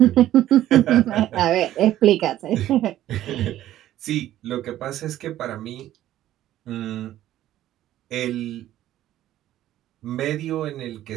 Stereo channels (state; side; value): quieter; left; 13.2 dB